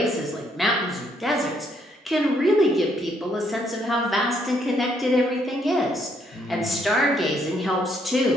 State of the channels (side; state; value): both; normal; correlation 0.71